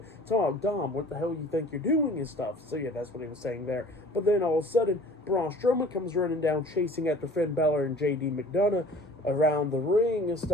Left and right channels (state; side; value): normal; both; correlation 0.47